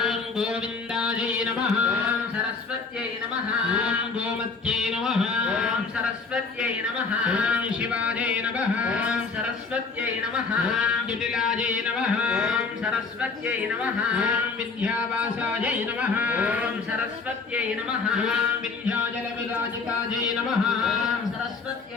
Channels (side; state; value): right; quieter; 4.6 dB